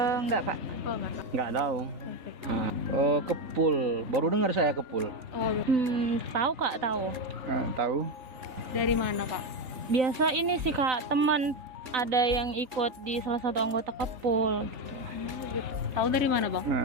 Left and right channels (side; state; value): left; late; 3.5 ms